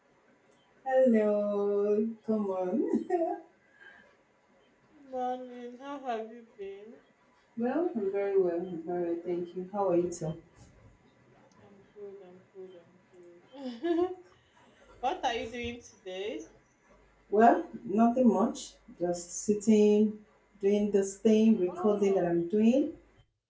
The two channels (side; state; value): both; identical; correlation 1.00